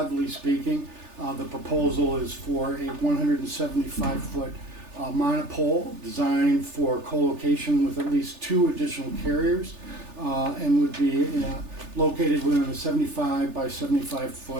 speaking, the proposal is for a 175-foot monopole designed for co-location with at least 2 additional carriers and would be located within a 75 by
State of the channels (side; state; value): left; late; 3.4 ms